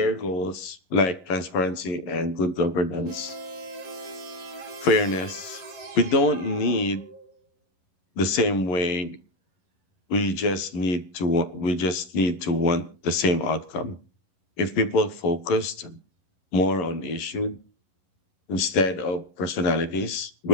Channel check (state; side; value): late; right; 11 ms